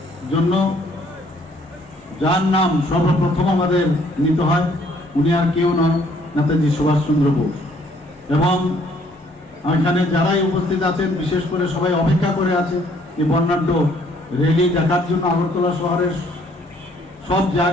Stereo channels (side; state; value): both; normal; correlation 0.63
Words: জন্য যার নাম সর্বপ্রথম আমাদের নিতে হয় উনি আর কেউ নয়, নেতাজি সুভাষচন্দ্র বোস। এবং এখানে যারাই উপস্থিত আছেন বিশেষ করে সবাই অপেক্ষা করে আছে এই বর্ণাঢ্য র্যালি দেখার জন্য। আগরতলা শহরের সব